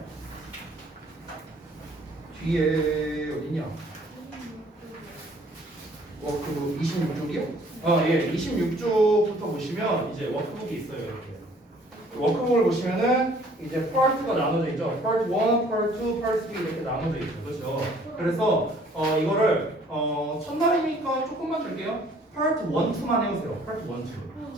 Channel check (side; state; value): both; normal; correlation 0.57